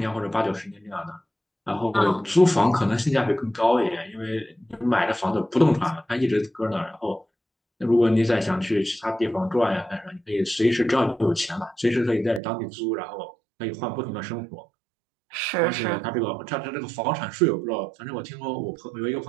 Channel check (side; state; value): left; drops out; at 12.4 s